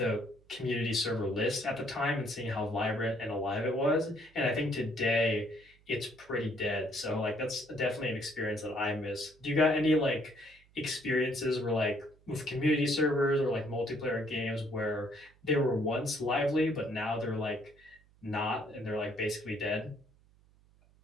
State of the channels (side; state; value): right; noise; hum, 30 dB below the sound